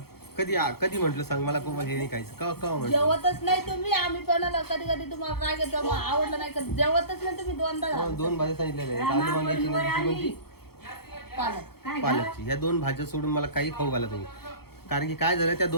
कधी म्हटलं सांग मला कोमल हे नाही खायचं. का म्हणतो जेवतच नाही तुम्ही. आम्ही पण कधी कधी तुम्हाला काय घेतो आवडलं नाही का जेवतच नाही तुम्ही. दोनदा दोन भाज्या सांगितलेल्या आहेत. आलू वांग्याची कोणती? पालकची. ह्या दोन भाज्या सोडून मला काही खाऊ घाला तुम्ही. कारण की काय झालं, त्या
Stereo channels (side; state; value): right; late; 0.96 ms